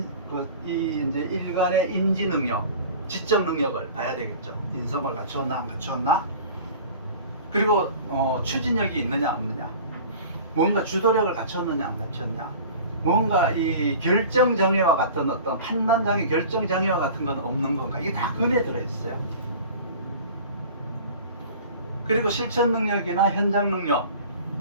일간의 인지 능력, 지적 능력을 봐야 되겠죠. 인성을 갖추었나 안 갖추었나. 그리고 추진력이 있느냐 없느냐, 뭔가 주도력을 갖췄느냐 안 갖췄냐, 뭔가 이 결정장애와 같은 어떤 판단장애, 결정장애와 같은 건 없는 건가, 이게 다 근에 들어있어요. 그리고 실천 능력이나 현장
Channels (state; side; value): inverted; both; correlation -0.41